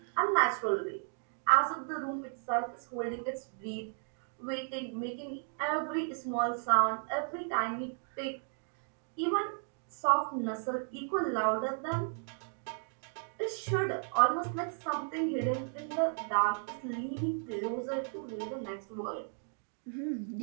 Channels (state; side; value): silent; left; 55 dB below the other